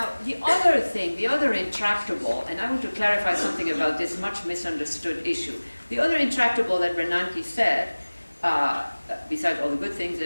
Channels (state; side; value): inverted; both; correlation -1.00